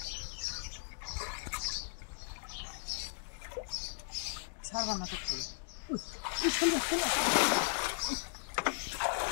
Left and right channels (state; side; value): silent; right; digital silence